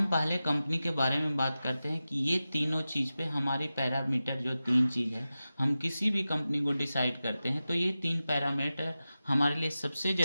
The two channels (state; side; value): inverted; both; correlation -0.94